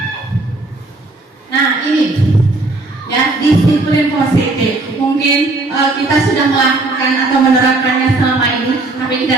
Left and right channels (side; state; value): left; quieter; 3.1 dB